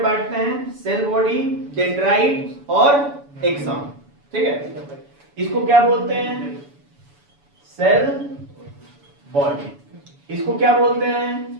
बांटते हैं, सेल बॉडी, डेंड्राइट और एक्सॉन, ठीक है। इसको क्या बोलते हैं? Cell body. इसको क्या बोलते हैं?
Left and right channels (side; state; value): left; late; 7.0 ms